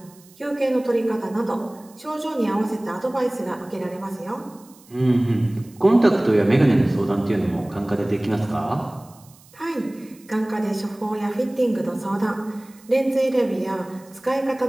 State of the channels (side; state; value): right; noise; hiss, 26 dB below the sound